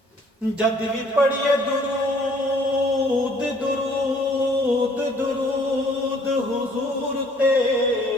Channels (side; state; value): both; normal; correlation 0.59